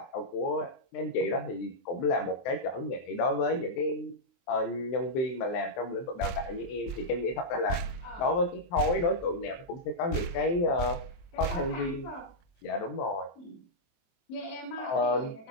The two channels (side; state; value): right; late; 23 ms